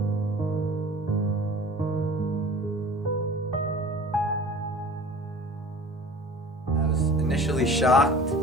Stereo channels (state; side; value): normal; both; correlation 0.43